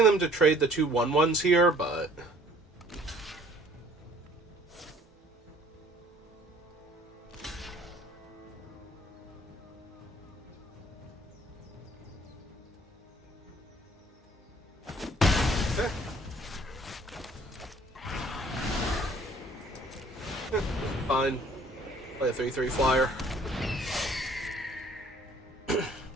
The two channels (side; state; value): both; normal; correlation 0.56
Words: them to trade the 2 1/1s here, but... Okay. Fine. Play a 3/3 flyer.